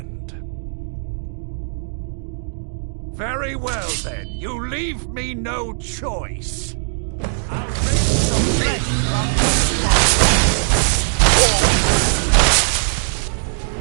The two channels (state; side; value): silent; left; digital silence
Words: Very well, then. You leave me no choice. I'll bring some flesh from